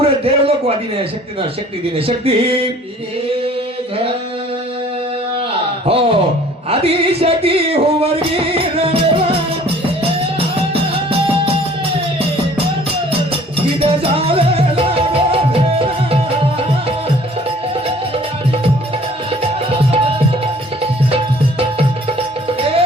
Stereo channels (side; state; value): both; normal; correlation 0.53